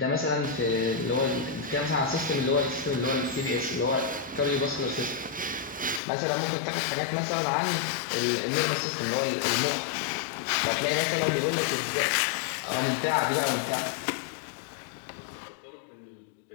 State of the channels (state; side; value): drops out; right; at 6.0 s